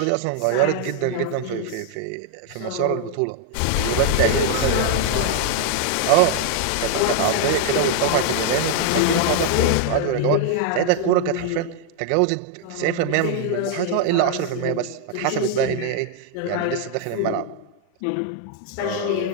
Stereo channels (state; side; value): different; both; correlation 0.00